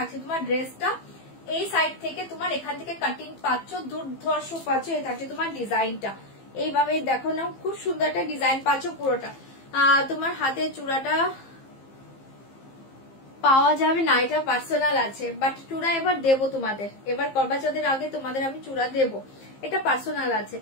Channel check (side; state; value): right; late; 15 ms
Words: তোমার ড্রেসটা, এই সাইড থেকে তোমার এখান থেকে কাটিং পাচ্ছ, দুর্ধর্ষ পাচ্ছ। এই থাকছে তোমার ডিজাইনটা, এইভাবে দেখো না, খুব সুন্দর একটা ডিজাইন পাচ্ছ পুরোটা। তোমার হাতে চূড়াটা পাওয়া যাবে না, এটা পার্সোনাল আছে, বাট চূড়া এবার দেবো তোমাদের, এবার করবা চৌধুরীর আগে তোমাদের আমি চূড়া দেবো, এটা পার্সোনাল আছে।